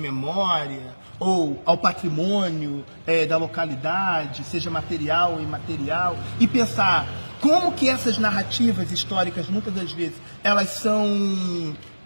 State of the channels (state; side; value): inverted; both; correlation -1.00